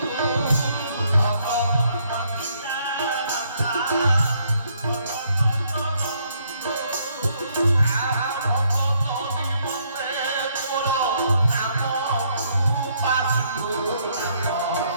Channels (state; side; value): inverted; both; correlation -0.70